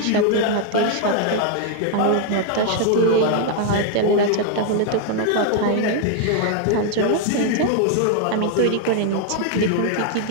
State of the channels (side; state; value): both; different; correlation 0.00